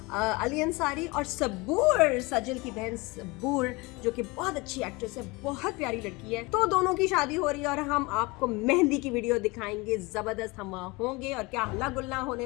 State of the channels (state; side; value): quieter; right; 24.9 dB